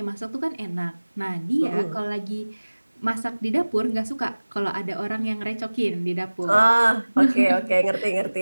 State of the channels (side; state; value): both; inverted; correlation -1.00